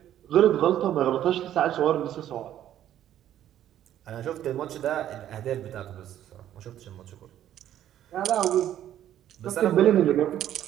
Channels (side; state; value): left; quieter; 11.6 dB